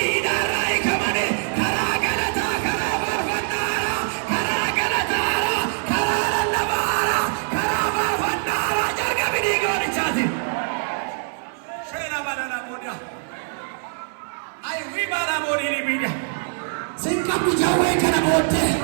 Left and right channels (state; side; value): silent; left; digital silence